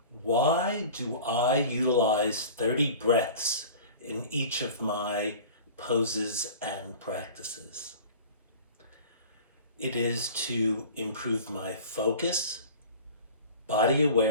Why do I utilize 30 breaths in each of my poses and practices? It is to improve my focus, body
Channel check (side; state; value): both; inverted; correlation -0.39